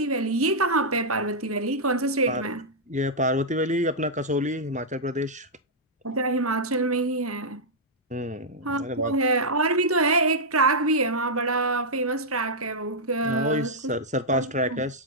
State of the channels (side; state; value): both; normal; correlation -0.07